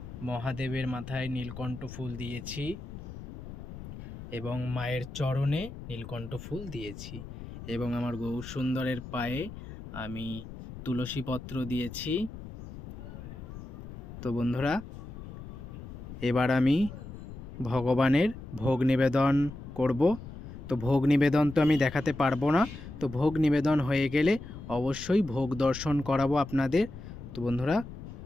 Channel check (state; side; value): noise; left; rumble, 12 dB below the sound